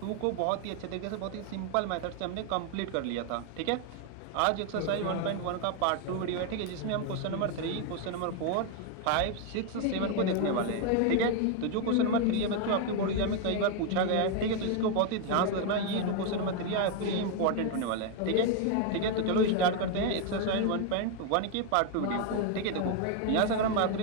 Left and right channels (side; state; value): both; different; correlation 0.01